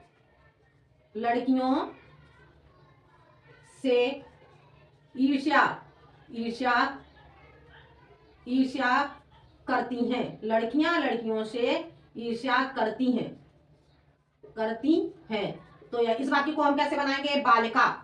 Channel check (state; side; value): identical; both; correlation 1.00